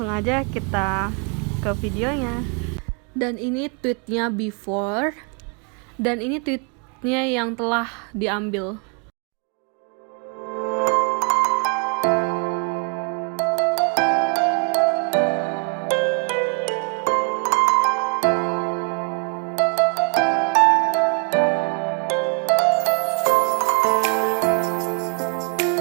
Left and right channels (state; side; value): quieter; left; 36.2 dB